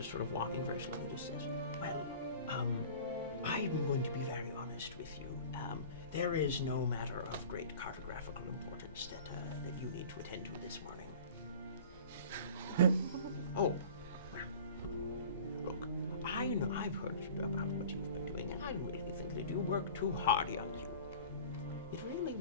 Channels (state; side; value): inverted; both; correlation -0.42